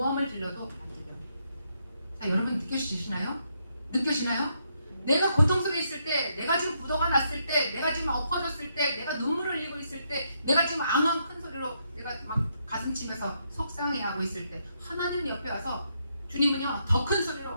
질러도 안 들려요. 자, 여러분 느껴지시나요? 내가 고통 속에 있을 때, 내가 지금 부도가 났을 때, 내가 지금 엎어졌을 때, 내가 눈물을 흘리고 있을 때, 내가 지금 앙앙 큰 소리로 내가 막 가슴 치면서 속상해하고 있을 때, 하나님은 옆에 와서, 주님은요 더 큰 소리로,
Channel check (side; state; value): both; inverted; correlation -0.77